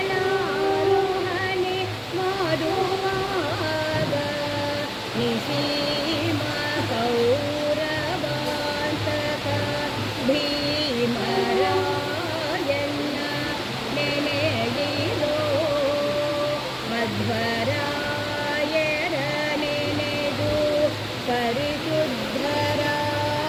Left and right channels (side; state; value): both; identical; correlation 1.00